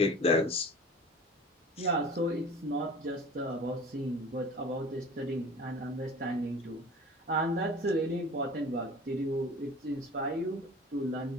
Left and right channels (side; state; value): both; normal; correlation 0.41